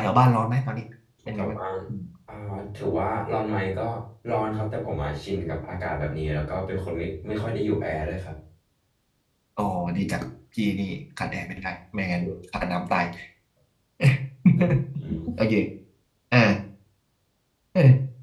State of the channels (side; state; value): both; identical; correlation 1.00